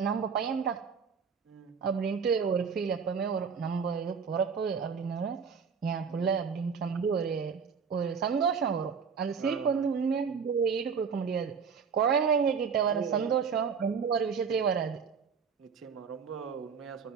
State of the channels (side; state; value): left; quieter; 6.2 dB